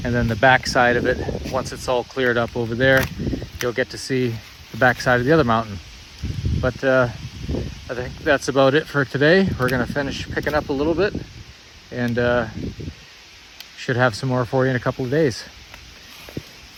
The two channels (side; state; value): both; identical; correlation 1.00